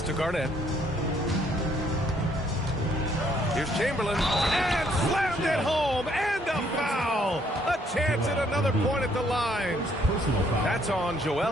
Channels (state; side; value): normal; both; correlation 0.67